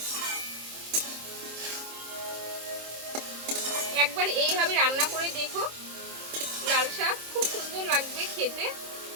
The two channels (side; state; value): left; late; 26 ms